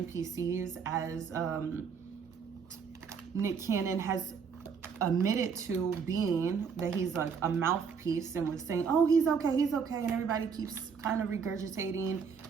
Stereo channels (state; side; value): quieter; left; 6.2 dB